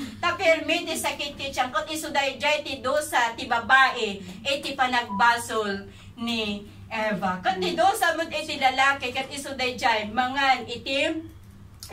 Tapirmiti sa kititsyan, kung isuday jay ti dosa, ti babae, iti pa nagbasol ni Eva. Kung ti dosa mo iti lalaki, kat isuday jay, mangan itim,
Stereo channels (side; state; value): both; identical; correlation 1.00